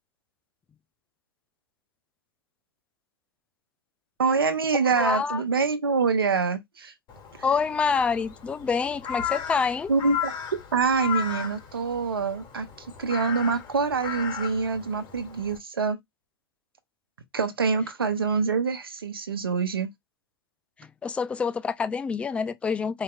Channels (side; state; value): both; normal; correlation -0.13